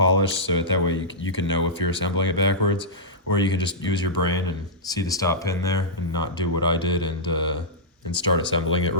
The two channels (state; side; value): normal; both; correlation -0.12